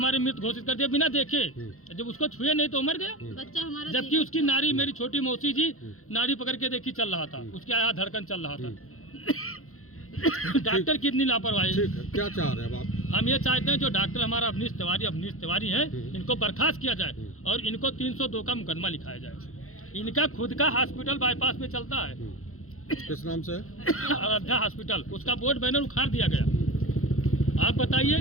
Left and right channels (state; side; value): late; right; 0.63 ms